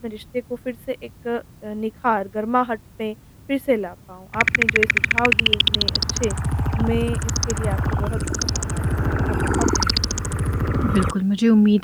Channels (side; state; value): both; identical; correlation 1.00